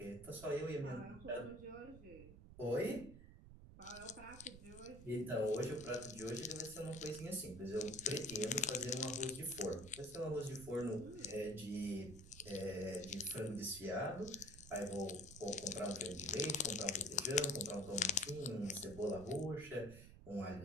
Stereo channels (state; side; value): noise; right; rumble, 15 dB below the sound